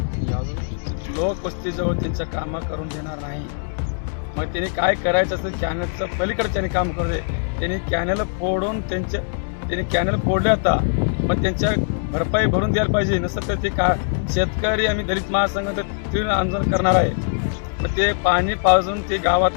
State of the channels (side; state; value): right; silent; digital silence